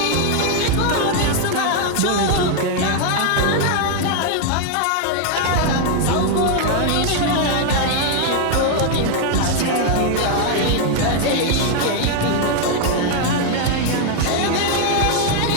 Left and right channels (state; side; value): different; both; correlation 0.00